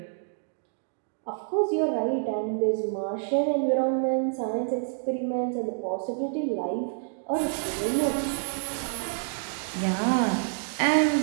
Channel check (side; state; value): left; silent; 60 dB below the other